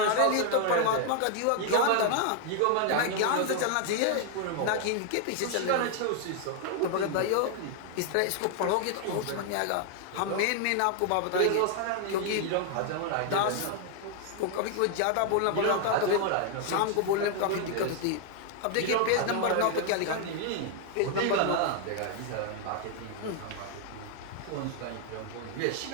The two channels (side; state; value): both; different; correlation 0.00